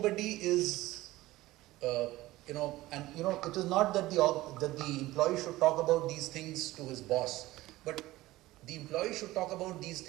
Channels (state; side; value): quieter; left; 17.6 dB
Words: is, it is not that the employee should talk about these things to his boss, but the employee should talk about these